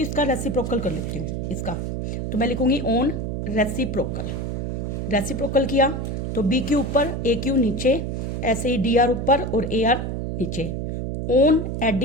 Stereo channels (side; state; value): right; noise; hum, 3 dB below the sound